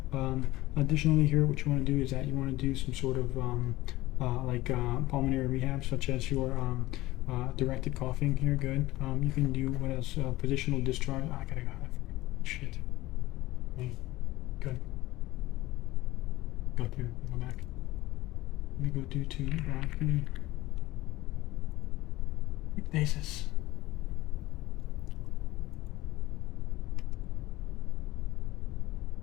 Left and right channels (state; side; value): quieter; right; 17.9 dB